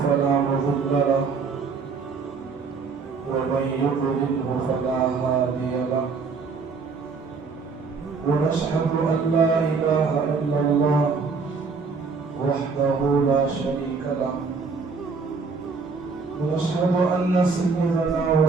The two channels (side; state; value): left; quieter; 4.8 dB